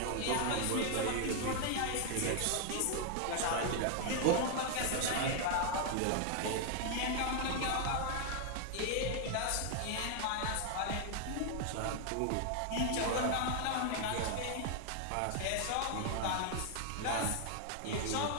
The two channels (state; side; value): different; both; correlation 0.00